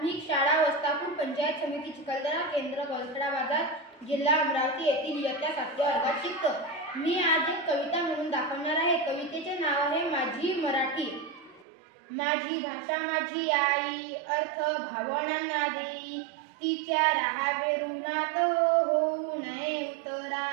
शाळा वस्तापूर पंचायत समिती चिखलदरा केंद्र गलसडा बाजार जिल्हा अमरावती येथील इयत्ता 7व्या वर्गात शिकतो. मी आज एक कविता म्हणून दाखवणार आहे. कवितेचे नाव आहे माझी मराठी. माझी भाषा माझी आई, अर्थ भावनांना देई, तिच्या राहावे ऋणात होऊ नये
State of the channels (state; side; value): drops out; left; at 11.7 s